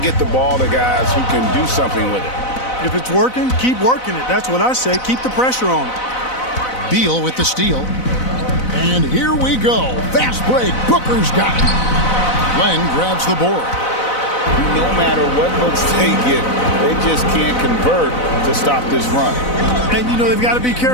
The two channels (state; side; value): late; right; 4.0 ms